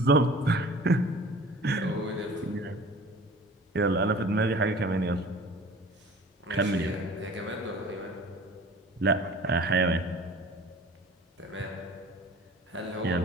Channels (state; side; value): normal; both; correlation 0.44